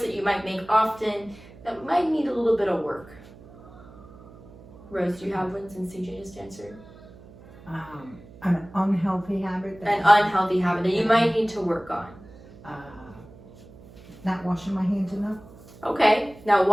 you might make often that might need a little bit of work. Rose, do you have one since CJ just answered? An unhealthy habit. An unhealthy habit that you might need to work on. Not washing my hands enough. Okay. Now,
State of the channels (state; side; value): noise; right; hum, 21 dB below the sound